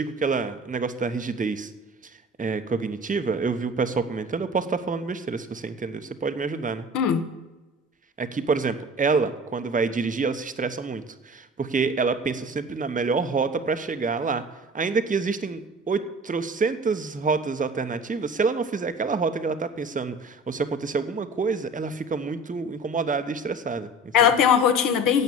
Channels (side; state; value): both; normal; correlation 0.41